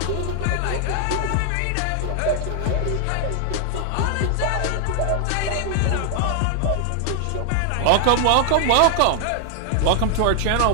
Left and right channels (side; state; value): both; different; correlation 0.00